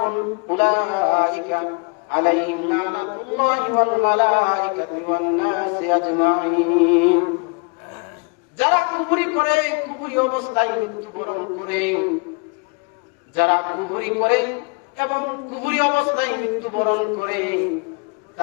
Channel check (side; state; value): right; quieter; 32.8 dB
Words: উলাইকা আলাইহিম লানাতুল্লাহি ওয়াল মালাইকাতি ওয়ান নাসি আজমাইন। যারা কুফরি করে, কুফরি অবস্থায় মৃত্যুবরণ করে, যারা কুফরি করে এবং কুফরি অবস্থায় মৃত্যুবরণ করে